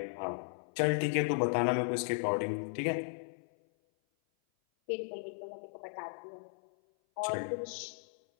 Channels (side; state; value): right; silent; 54 dB below the other